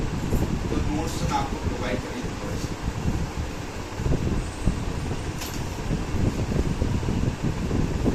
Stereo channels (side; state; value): both; identical; correlation 1.00